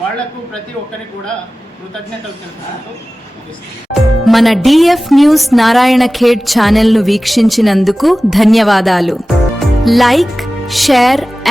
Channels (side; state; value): both; normal; correlation 0.97